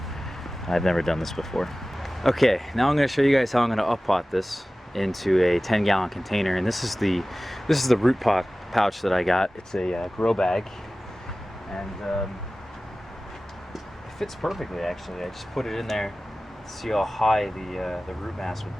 I've never done this before. Okay, now I'm gonna show you guys how I'm gonna up-pot this into a 10-gallon container, and this is the root pot pouch that I got. It's a grow bag, and it fits perfectly actually. I just put it in there to see how high the root mass would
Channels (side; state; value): both; normal; correlation 0.97